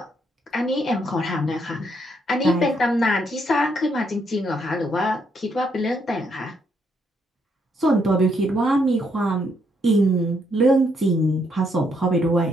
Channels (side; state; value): both; normal; correlation 0.74